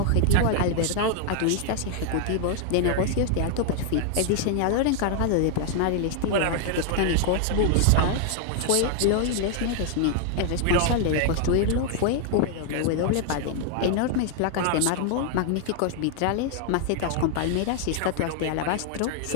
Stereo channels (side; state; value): both; different; correlation 0.00